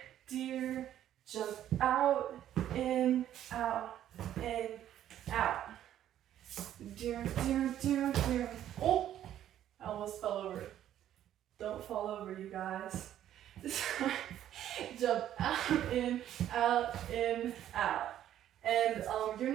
jump out, in, fall over, you guys. Jump out, in, out, in, out. And you're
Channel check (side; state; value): left; quieter; 11.5 dB